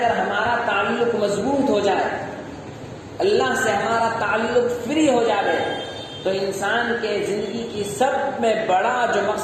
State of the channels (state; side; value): identical; both; correlation 1.00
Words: ہمارا تعلق مضبوط ہو جائے، اللہ سے ہمارا تعلق فری ہو جائے، تو انسان کے زندگی کی سب میں بڑا جو